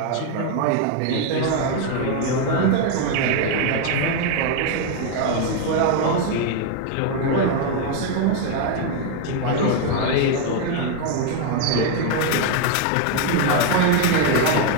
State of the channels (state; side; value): different; both; correlation 0.01